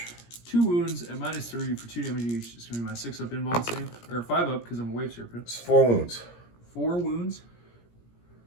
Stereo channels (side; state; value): right; late; 17 ms